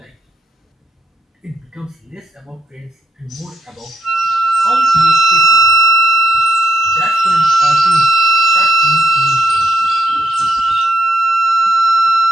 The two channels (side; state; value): both; normal; correlation 0.79